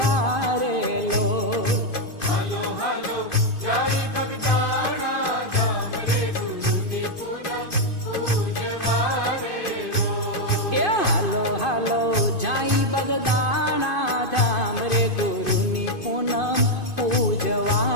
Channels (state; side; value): late; right; 2.5 ms